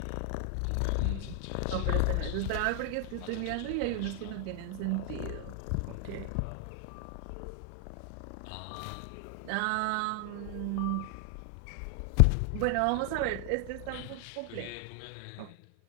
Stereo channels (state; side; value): different; both; correlation 0.00